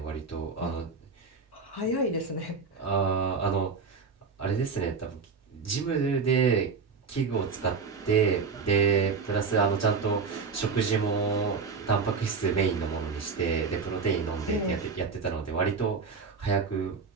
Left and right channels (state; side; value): quieter; left; 5.1 dB